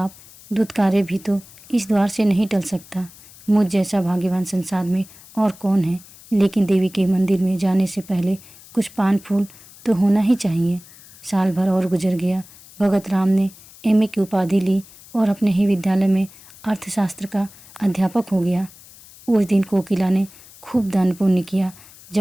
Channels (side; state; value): left; noise; hiss, 22 dB below the sound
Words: दुत्कारे भी तो इस द्वार से नहीं टल सकता। मुझ जैसा भाग्यवान संसार में और कौन है? लेकिन देवी के मंदिर में जाने से पहले कुछ पान फूल तो होना ही चाहिए। साल भर और गुजर गया। भगत राम ने एमए की उपाधि ली और अपने ही विद्यालय में अर्थशास्त्र का अध्यापक हो गया। उस दिन कोकिला ने खूब दान पुण्य किया।